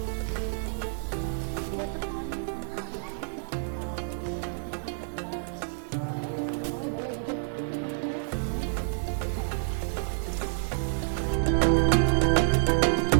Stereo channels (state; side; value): silent; left; 59 dB below the other